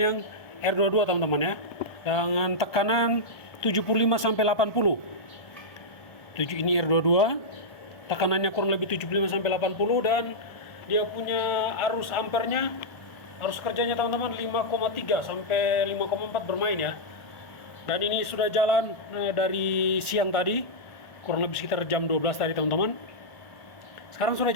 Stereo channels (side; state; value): right; late; 1.5 ms